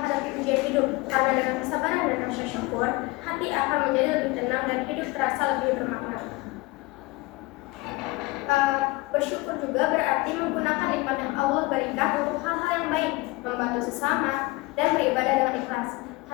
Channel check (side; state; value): right; quieter; 22.5 dB